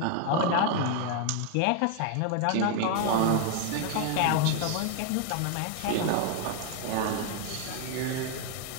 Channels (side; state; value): both; different; correlation 0.01